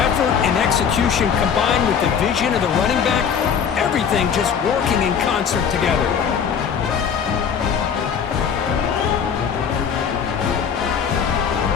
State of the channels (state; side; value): quieter; right; 7.3 dB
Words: and execution combined with the vision of the running back, everything just working in concert together.